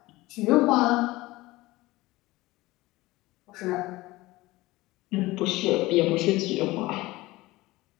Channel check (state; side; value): quieter; right; 19.5 dB